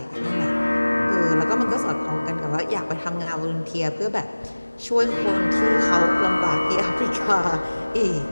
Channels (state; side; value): inverted; both; correlation -1.00